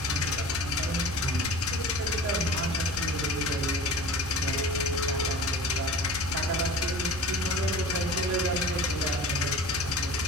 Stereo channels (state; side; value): normal; both; correlation 0.39